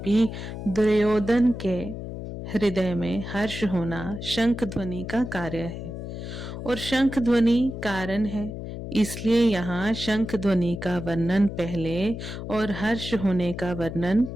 दुर्योधन के हृदय में हर्ष होना शंख ध्वनि का कार्य है और शंख ध्वनि कारण है, इसलिए यहाँ शंख ध्वनि का वर्णन पहले और हर्ष होने का वर्णन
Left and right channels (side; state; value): left; noise; hum, 8 dB below the sound